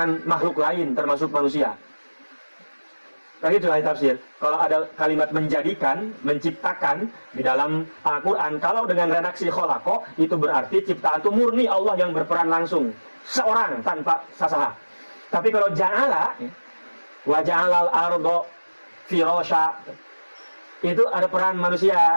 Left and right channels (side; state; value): both; inverted; correlation -1.00